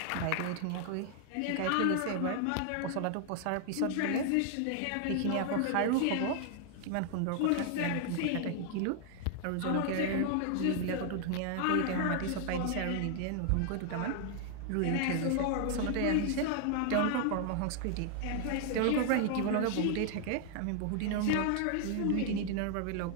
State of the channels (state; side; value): different; both; correlation 0.00